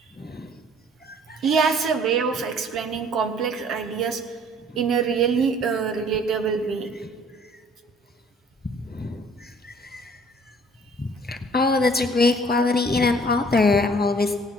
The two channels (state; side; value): normal; both; correlation 0.55